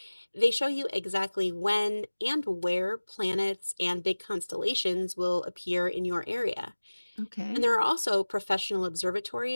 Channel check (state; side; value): inverted; both; correlation -1.00